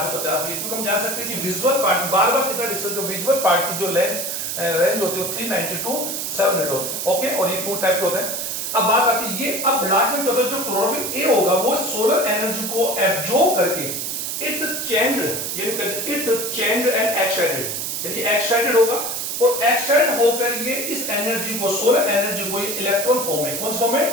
भी, क्योंकि हम जान सकते हैं कि विजुअल पार्ट बार बार कितना डिस्टेंस, विजुअल पार्ट की जो रेंज होती है 390 टू 700 होते हैं। ओके, और ये 2 टाइप के होते हैं। अब बात आती है, ये अब लास्ट में क्या होता है, जो क्लोरोफिल ए होगा वो सोलर एनर्जी को एब्जॉर्ब करके इट चेंज एंड एक्साइटेड, यानी एक्साइटेड होगा और एक्साइट होकर ये इस एनर्जी को, सोलर एनर्जी को, ये इलेक्ट्रॉन फॉर्म में, कौन फॉर्म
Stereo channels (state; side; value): noise; right; hiss, 3 dB below the sound